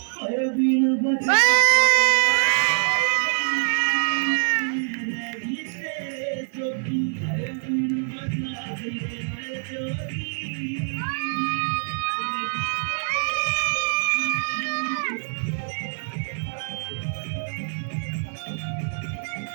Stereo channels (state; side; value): silent; left; 62 dB below the other